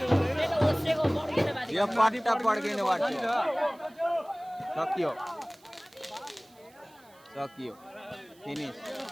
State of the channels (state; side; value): noise; right; hiss, 28 dB below the sound